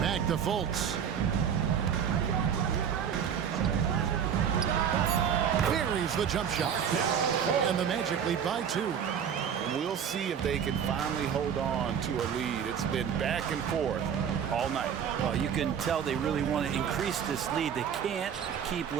to Fultz. Buries the jump shot. And the Magic lead by 2. We'll see if they can finally hold on to a lead. It's been back and forth all night. Well, you can tell they really want to increase this lead. They can't keep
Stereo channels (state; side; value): quieter; left; 8.0 dB